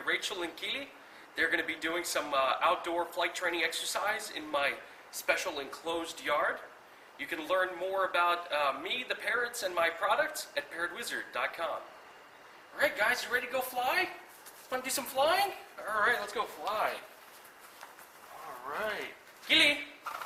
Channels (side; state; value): both; identical; correlation 1.00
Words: Rachel and Kili. They're going to be doing some outdoor flight training exercise in my special enclosed yard. You can learn more about me, the parrots, and my products at parrotwizard.com. All right, guys, you ready to go fly? Want to do some flying? All right, let's go fly. All right. Kili.